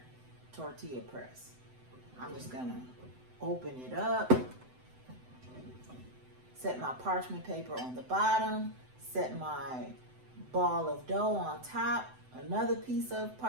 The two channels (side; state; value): left; late; 7.9 ms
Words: tortilla press. I'm just gonna open it up, set my parchment paper on the bottom, set my ball of dough on top, another piece of